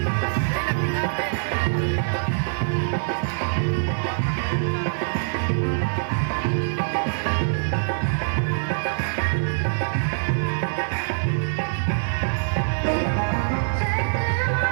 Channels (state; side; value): silent; left; digital silence